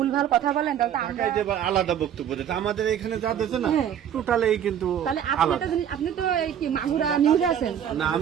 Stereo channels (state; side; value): quieter; left; 9.5 dB